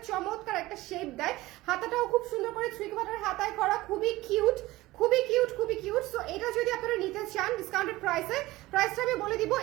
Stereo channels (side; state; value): left; quieter; 18.6 dB